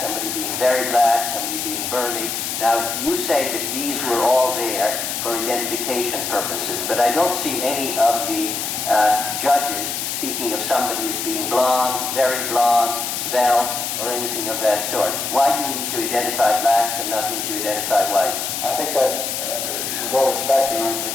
somebody being very black, somebody being burly. Now, you say that these were all there for identification purposes, but I don't see any of the judges speaking of somebody as being blonde, very blonde, svelte, or anything of that sort. Why do you need to identify blacks and not need to identify whites? I think that, with all respect, Your Honor, to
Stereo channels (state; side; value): noise; left; hiss, 3 dB below the sound